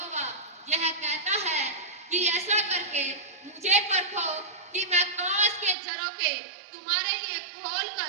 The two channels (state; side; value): drops out; left; at 5.8 s